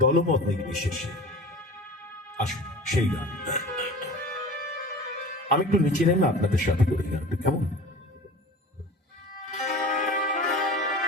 দলমত নির্বিশেষে। আসুন সেই গান আমি একটু নিচে নেমে আপনাদের সাথে করি গানটা, কেমন?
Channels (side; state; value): both; normal; correlation 0.37